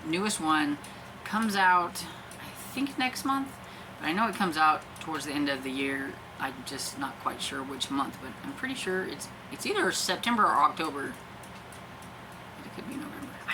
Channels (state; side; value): identical; both; correlation 1.00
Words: newest one comes out, I think, next month, but I know it comes out towards the end of the year. I'm just not quite sure which month, but I'm pretty sure it's either September or October. It could be November.